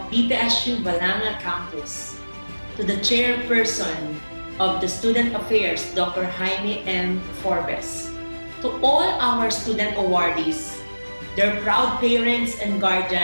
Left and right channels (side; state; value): both; inverted; correlation -1.00